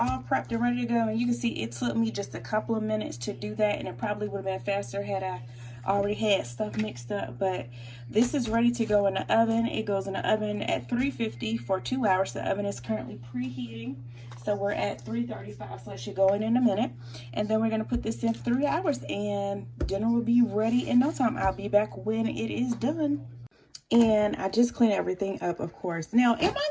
prepped and ready to go, and you can see it took me just a couple of minutes to do that, and it probably would have been faster had I already had stuff mixed up. But this is ready to go in the oven. It goes in the oven at 350 for 2 hours. The oven is currently preheating, so we're at 335, so it should go in a minute. And then we're going to put this in 3 hours, and dinner will be ready in no time. I'll be back when it is done. And I just clean everything up, of course. Now, am I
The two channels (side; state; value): both; identical; correlation 1.00